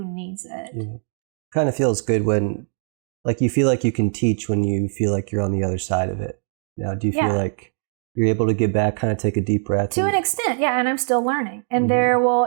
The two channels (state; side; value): silent; left; 58 dB below the other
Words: needs it. Yeah. Kind of feels good when, you feel like you can teach when you feel like you're on the other side of it. Now, do you feel like you're able to get back, kind of take a deep breath? To an extent, yeah, and I'm still learning. And there will,